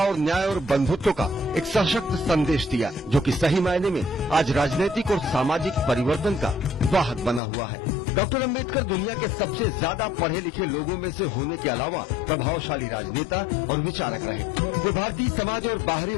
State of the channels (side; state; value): right; drops out; at 7.4 s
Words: न्याय और बंधुत्व का एक सशक्त संदेश दिया, जो कि सही मायने में आज राजनीतिक और सामाजिक परिवर्तन का वाहक बना हुआ है। डॉक्टर अंबेडकर दुनिया के सबसे ज्यादा पढ़े लिखे लोगों में से होने के अलावा प्रभावशाली राजनेता और विचारक रहे। वे भारतीय समाज और बाहरी